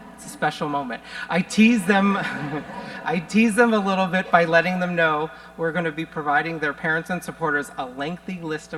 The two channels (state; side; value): identical; both; correlation 1.00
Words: It's a special moment. I tease them a little bit by letting them know we're going to be providing their parents and supporters a lengthy list